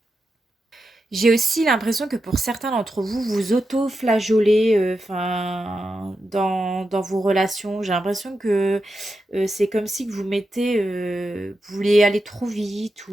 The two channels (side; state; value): both; normal; correlation 0.88